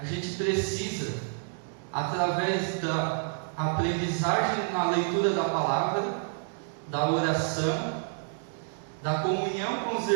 gente precisa, através da aprendizagem na leitura da palavra, da oração, da comunhão com os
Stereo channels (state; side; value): silent; left; digital silence